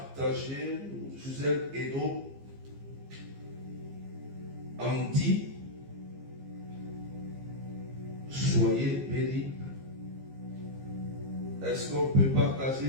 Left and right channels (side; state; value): left; late; 15 ms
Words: Suzanne Edo Andy? Soyez bénis. Est-ce qu'on peut partager,